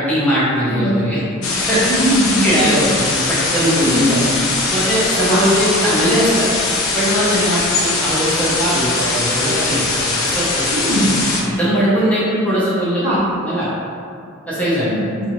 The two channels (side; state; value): both; normal; correlation 0.36